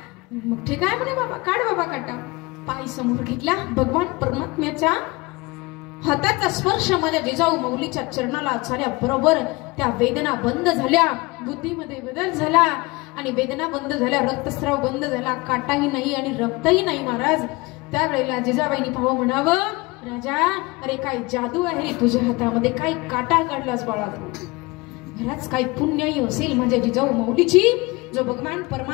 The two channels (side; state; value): right; quieter; 23.7 dB